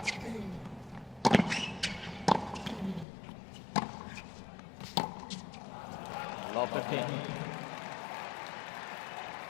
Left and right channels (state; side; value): drops out; right; at 3.1 s